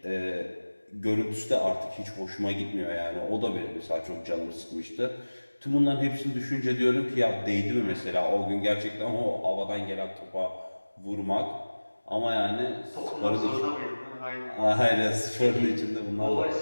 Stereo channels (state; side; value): inverted; both; correlation -1.00